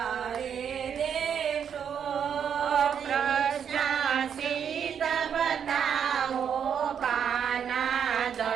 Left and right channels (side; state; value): left; quieter; 7.9 dB